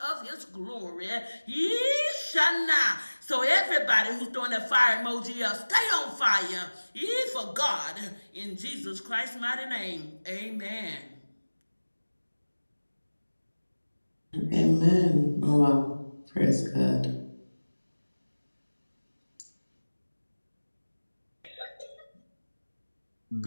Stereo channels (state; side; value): inverted; both; correlation -1.00